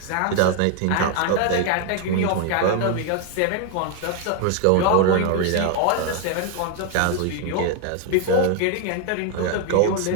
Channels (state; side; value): different; both; correlation 0.01